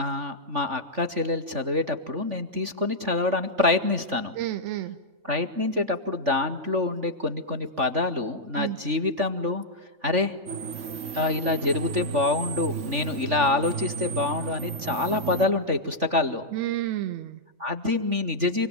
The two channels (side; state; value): left; late; 3.5 ms